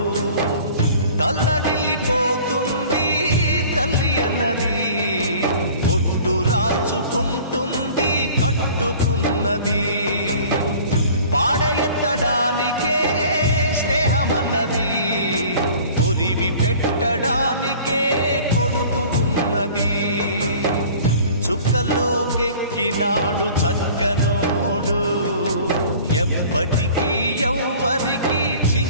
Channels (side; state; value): both; inverted; correlation -0.47